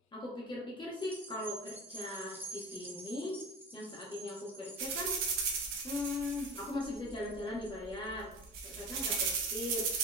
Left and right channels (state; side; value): normal; both; correlation 0.33